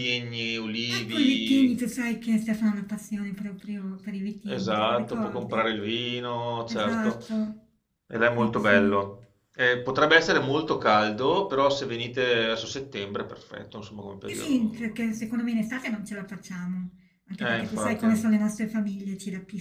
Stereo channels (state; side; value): identical; both; correlation 1.00